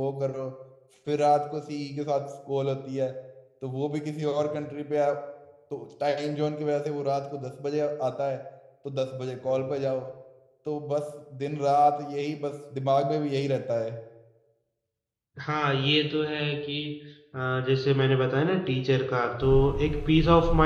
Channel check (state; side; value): identical; both; correlation 1.00